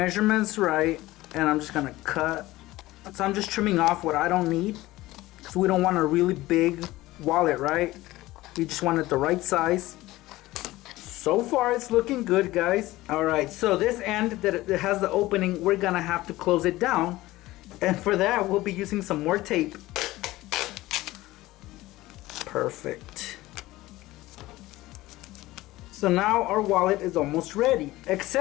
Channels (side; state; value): right; quieter; 17.8 dB